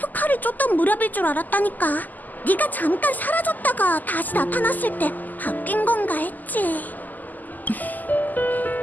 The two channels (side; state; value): right; late; 0.084 ms